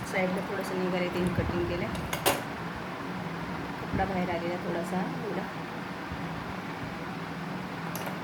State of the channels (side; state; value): both; identical; correlation 1.00